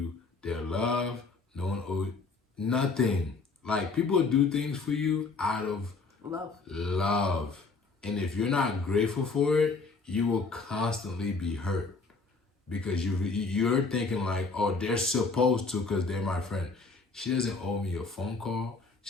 their love. No one owes nothing. Like, people do things for you out of love. And if you're not grateful for it, you will constantly be hurt. Because you're thinking like, oh, they're supposed to because they're my friend. She doesn't owe me a phone call.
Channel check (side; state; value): right; quieter; 4.2 dB